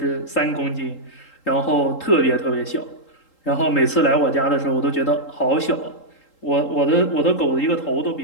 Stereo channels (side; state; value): right; late; 3.8 ms